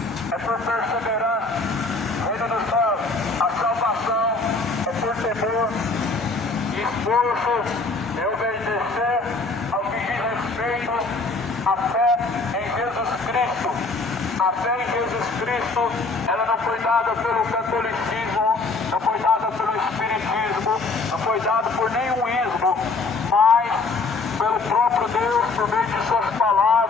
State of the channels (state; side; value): quieter; right; 3.7 dB